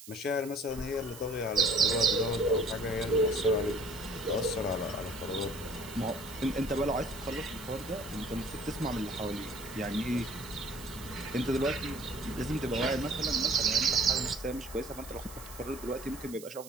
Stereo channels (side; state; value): right; noise; hiss, 16 dB below the sound